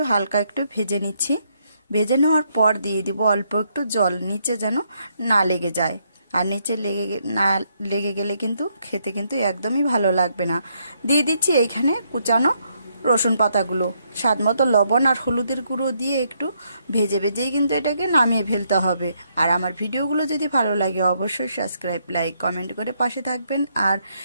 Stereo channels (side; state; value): both; inverted; correlation -0.75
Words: হালকা একটু ভেজে নিচ্ছি। ভেজে নেওয়ার পর দিয়ে দিব অল্প একটু জল, নিচে যেন না লেগে যায়। আর নিচে না লেগে গেলে কিন্তু খেতে কিন্তু একদমই ভালো লাগবে না। দিয়ে দিচ্ছি এইখানে কুচানো রসুন পাতাগুলো, স্বাদ মতো লবণ আর হলুদের গুঁড়ো দিয়ে একটু ভেজে ভেজেই কিন্তু এটাকে নামিয়ে ফেলতে হবে। আর আমার ভিডিওগুলো যদি ভালো লাগে অবশ্যই সাবস্ক্রাইব, লাইক, কমেন্ট করে পাশে থাকবেন। আর